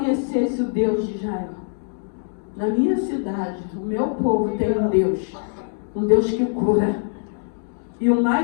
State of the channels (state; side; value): silent; right; digital silence